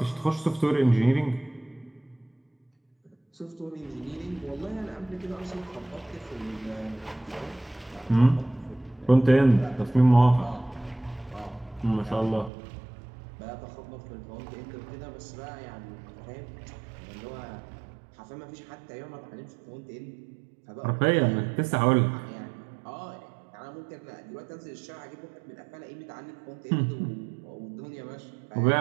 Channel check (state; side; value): drops out; left; at 12.5 s